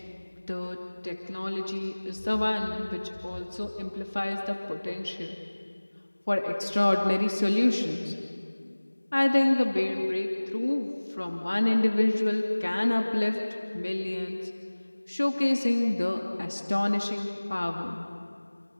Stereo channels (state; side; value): inverted; both; correlation -1.00